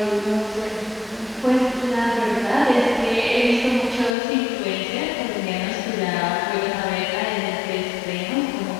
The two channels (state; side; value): drops out; right; at 4.2 s